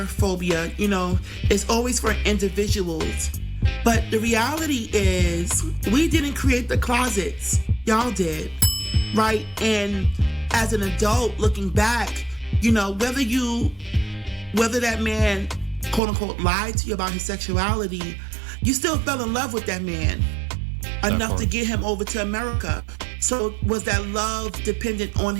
phobia. You know, it's always for individuals. But the reality is, we didn't create the closets. Y'all did, right? And as an adult looking back, you know, whether that man, quote unquote, lied to you about his sexuality, you still fell in love with that man enough to get him over to America. So was that love dependent on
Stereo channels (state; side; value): drops out; left; at 16.0 s